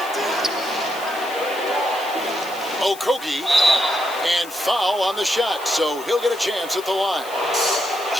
Okogie, and foul on the shot, so he'll get a chance at the line.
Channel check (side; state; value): left; noise; hiss, 17 dB below the sound